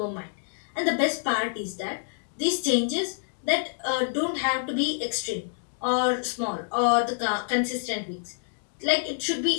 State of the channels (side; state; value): right; silent; digital silence